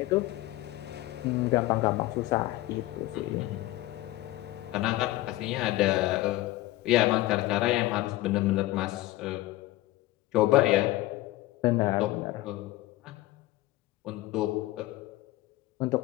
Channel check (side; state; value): right; quieter; 17.7 dB